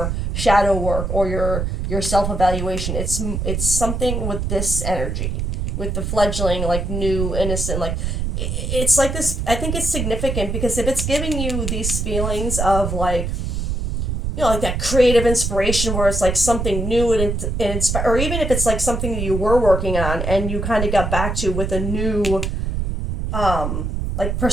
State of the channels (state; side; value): noise; right; rumble, 2 dB below the sound